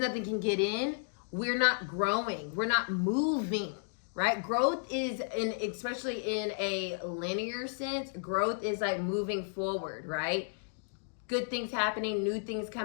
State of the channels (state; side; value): silent; right; digital silence